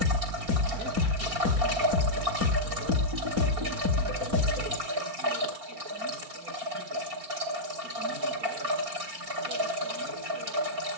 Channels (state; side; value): late; left; 4.3 ms